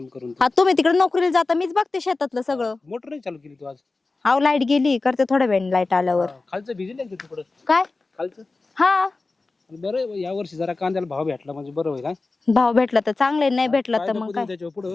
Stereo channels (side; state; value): right; quieter; 3.6 dB